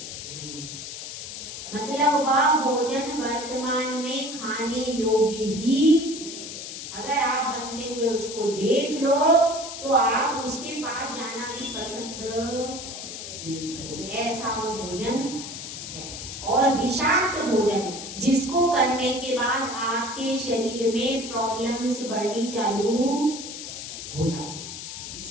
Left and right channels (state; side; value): noise; left; hiss, 9 dB below the sound